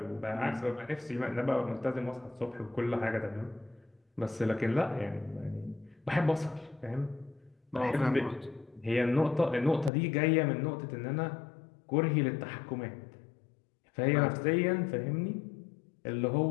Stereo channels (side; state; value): right; drops out; at 9.9 s